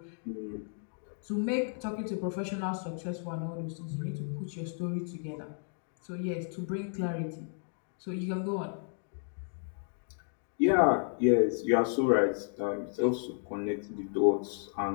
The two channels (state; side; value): silent; right; 56 dB below the other